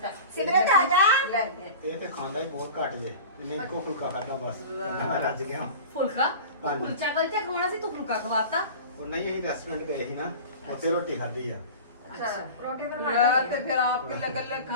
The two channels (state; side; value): inverted; both; correlation -0.35